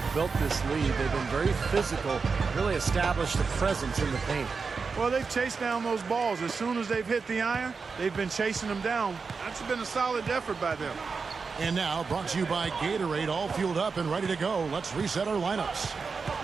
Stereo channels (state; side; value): quieter; left; 4.9 dB